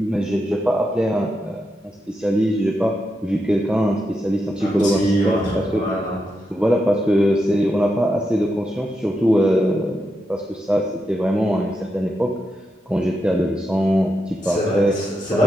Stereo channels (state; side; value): normal; both; correlation 0.85